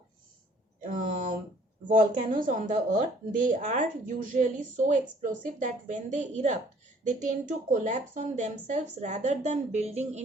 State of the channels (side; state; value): both; normal; correlation 0.58